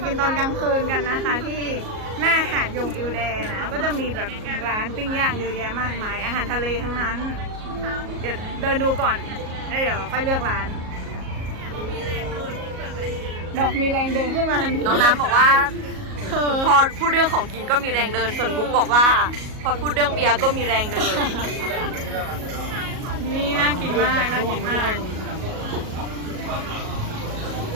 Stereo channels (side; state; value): left; late; 37 ms